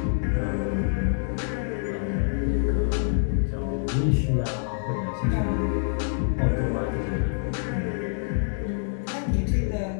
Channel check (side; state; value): right; silent; digital silence